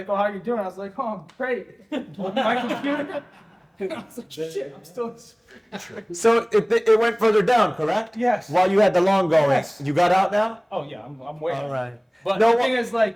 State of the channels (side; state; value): both; identical; correlation 1.00